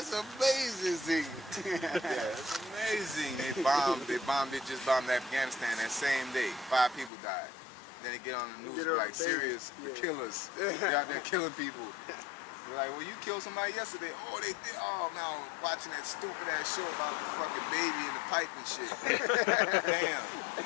amazing. Yeah, it's amazing. They just bombed Afghanistan that same day. 5 people died. Then they get on the news like serious killers. They're out there killing people. They're like, well, you killed somebody yesterday. Oh, they did. Oh, man, I was watching that stupid ass show about the fucking baby in the pipe and shit. Damn.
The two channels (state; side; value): drops out; right; at 7.1 s